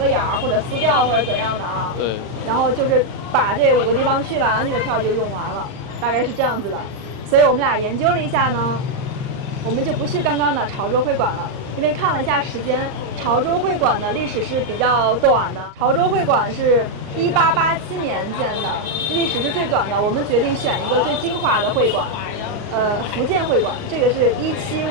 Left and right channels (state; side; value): late; left; 38 ms